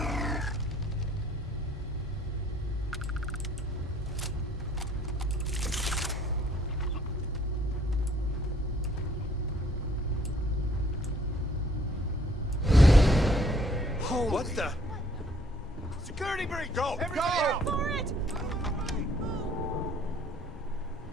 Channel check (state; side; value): normal; both; correlation 0.61